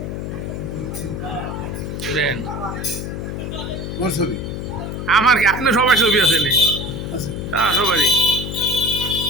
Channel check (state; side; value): noise; left; hum, 5 dB below the sound